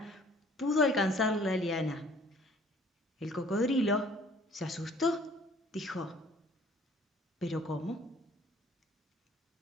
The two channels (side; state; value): both; normal; correlation 0.56